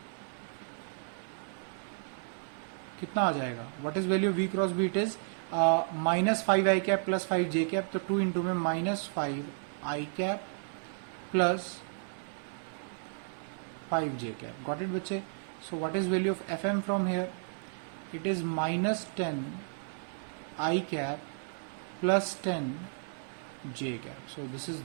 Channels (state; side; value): silent; left; 56 dB below the other